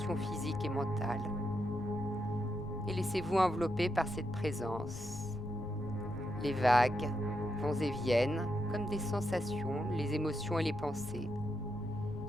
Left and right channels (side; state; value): left; noise; rumble, 12 dB below the sound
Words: physiques et mentales. Et laissez-vous envelopper par cette présence. Les vagues vont et viennent comme des sensations, les émotions et les pensées.